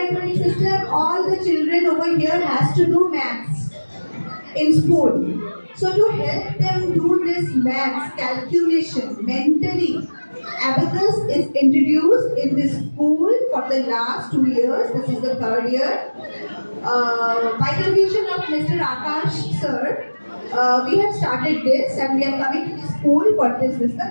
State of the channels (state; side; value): inverted; both; correlation -1.00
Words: system, all the children over here has to do maths in school. So to help them do this maths calculation mentally, Abacus is introduced in this school for the last 2 years. This is the third year. By the vision of Mr. Akash sir, we have started this and we are coming to the school for this the